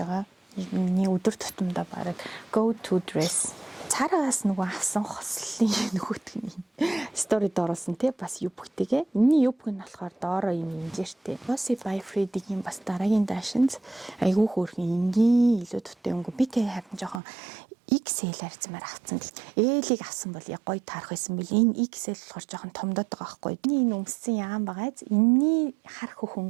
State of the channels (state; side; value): drops out; left; at 17.2 s